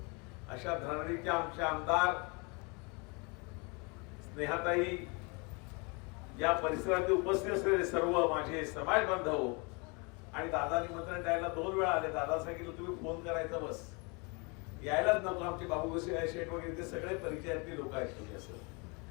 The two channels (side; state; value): right; quieter; 30.8 dB